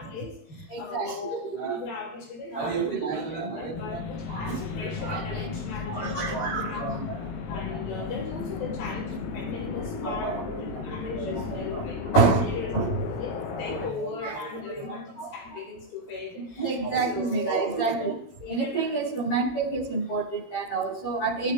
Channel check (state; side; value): late; right; 17 ms